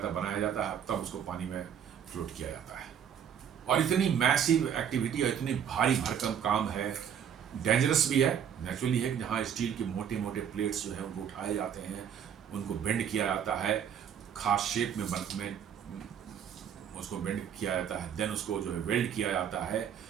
है, बनाया जाता है, तब उसको पानी में फ्लोट किया जाता है। और इतनी मैसिव एक्टिविटी और इतनी भारी भरकम काम है, डेंजरस भी है, नेचुरली है, जहाँ स्टील के मोटे मोटे प्लेट्स जो है उनको उठाए जाते हैं, उनको बेंड किया जाता है, खास शेप में उसको बेंड किया जाता है, देन उसको जो है वेल्ड किया जाता है।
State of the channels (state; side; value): quieter; left; 8.6 dB